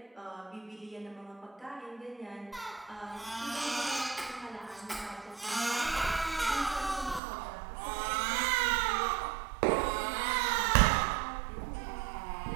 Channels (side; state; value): left; drops out; at 7.2 s